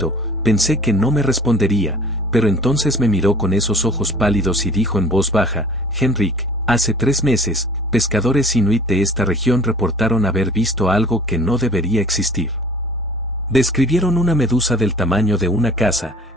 pensé que no me respondería, pero entonces me miró con esos ojos pálidos y dijo en voz baja: Henrik, hace 3 meses, pescadores inuit de esta región reportaron haber visto algo que no debería existir. Describieron una medusa del tamaño de una casa,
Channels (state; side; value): normal; both; correlation 0.48